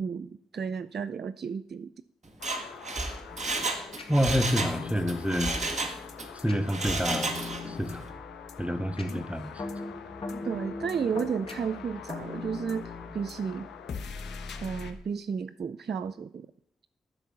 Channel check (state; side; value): normal; both; correlation 0.79